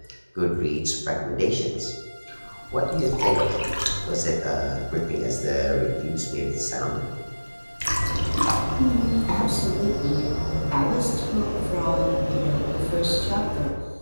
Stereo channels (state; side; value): inverted; both; correlation -1.00